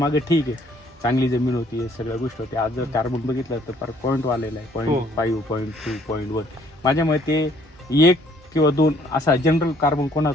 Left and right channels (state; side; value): normal; both; correlation 0.62